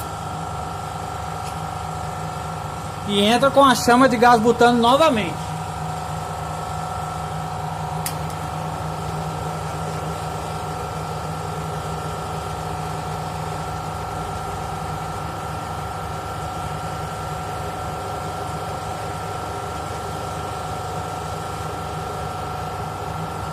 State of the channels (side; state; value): both; identical; correlation 1.00